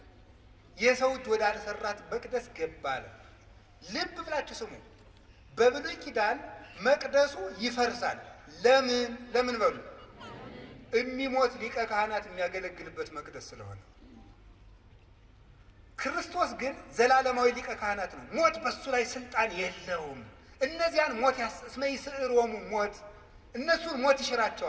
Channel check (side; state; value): both; identical; correlation 1.00